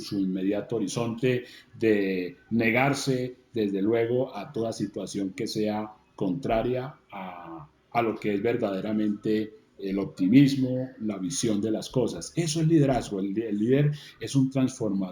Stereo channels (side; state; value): both; identical; correlation 1.00